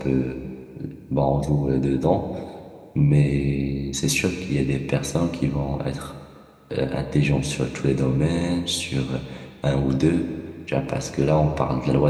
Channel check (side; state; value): both; identical; correlation 1.00